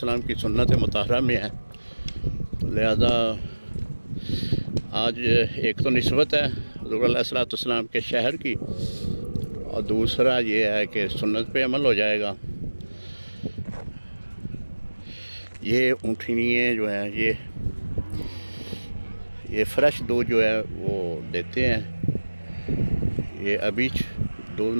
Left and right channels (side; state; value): both; inverted; correlation -1.00